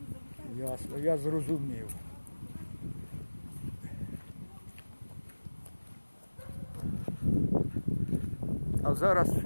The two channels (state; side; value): inverted; both; correlation -1.00